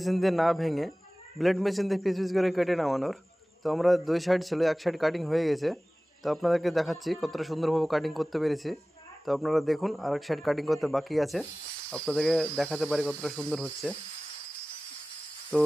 দিয়ে না ভেঙে ব্লেড মেশিন দিয়ে পিস পিস করে কেটে নামানোর। তো আমরা দুই সাইড ছিল, এক সাইড কাটিং হয়ে গেছে। তো আপনাদেরকে দেখাচ্ছি কতটা সুন্দরভাবে কাটিং করতে পেরেছি। তো আপনারা দেখুন, আর এক সাইড কাটিং করতে বাকি আছে, আপনাদেরকে দেখাতে পারি কতটা সুন্দর হচ্ছে। তো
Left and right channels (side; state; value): both; normal; correlation 0.98